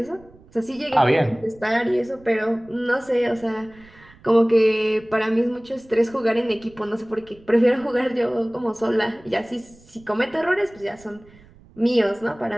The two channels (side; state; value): right; noise; rumble, 26 dB below the sound